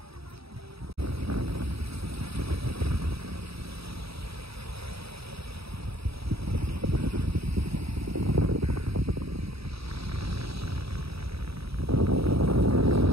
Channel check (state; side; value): late; left; 0.77 ms